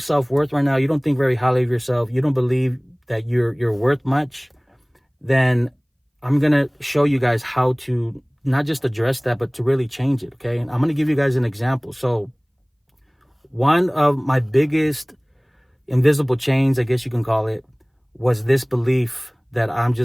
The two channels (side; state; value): both; identical; correlation 1.00